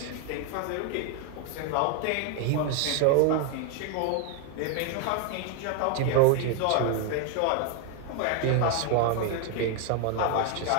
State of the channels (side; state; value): both; different; correlation 0.01